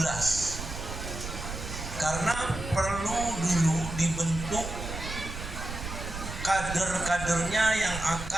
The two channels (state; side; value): noise; right; rumble, 8 dB below the sound